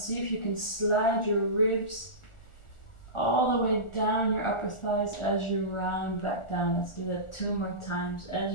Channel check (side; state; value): right; late; 1.4 ms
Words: if you can slide your ribs all the way down your upper thighs as you round back down. Let's do that 2 more times. As